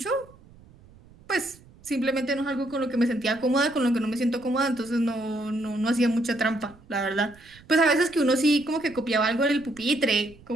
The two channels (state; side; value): noise; right; rumble, 25 dB below the sound